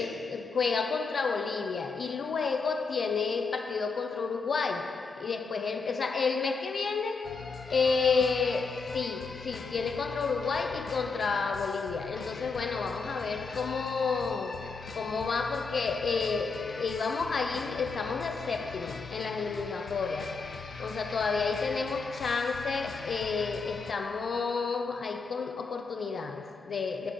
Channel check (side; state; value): right; quieter; 4.5 dB